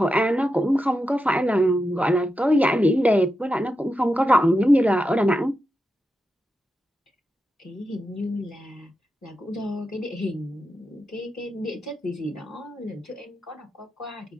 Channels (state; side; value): normal; both; correlation 0.88